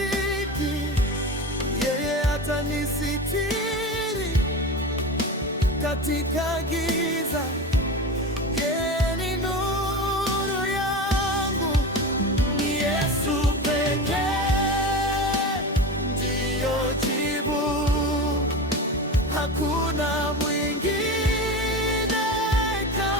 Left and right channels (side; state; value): both; normal; correlation 0.26